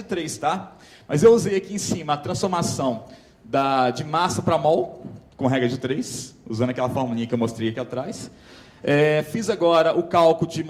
3, tá? Mas eu usei aqui em cima a transformação de massa para mol, com regra de 3, usando aquela formulinha que eu mostrei aqui atrás. Fiz agora o cálculo de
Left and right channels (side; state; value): both; identical; correlation 1.00